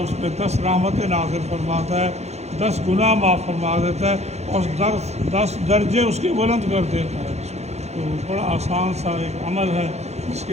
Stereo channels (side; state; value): left; late; 0.32 ms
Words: اس پہ 10 رحمتیں نازل فرماتا ہے، 10 گناہ معاف فرما دیتا ہے اور 10 درجے اس کے بلند کر دیتا ہے۔ تو بڑا آسان سا ایک عمل ہے جس